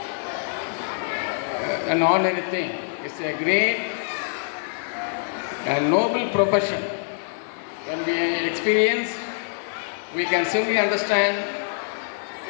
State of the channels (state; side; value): silent; right; digital silence